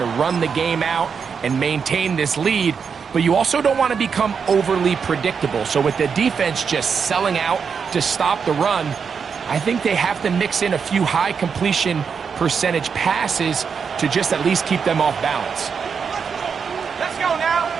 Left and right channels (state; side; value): quieter; left; 6.2 dB